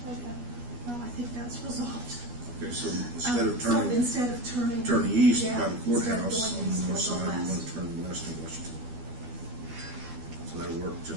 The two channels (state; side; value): late; left; 12 ms